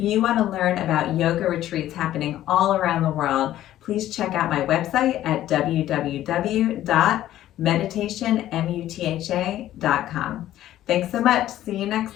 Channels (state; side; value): quieter; right; 13.2 dB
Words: want to learn about yoga retreats happening all around the world, please check out my website at www.meditationmutha.com. Thanks so much. See you